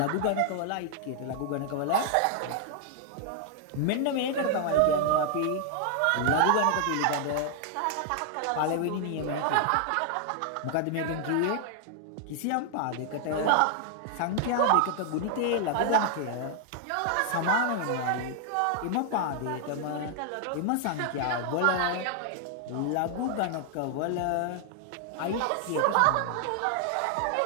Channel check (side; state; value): both; different; correlation 0.00